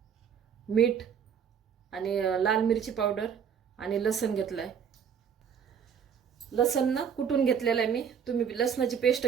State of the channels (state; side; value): quieter; left; 7.6 dB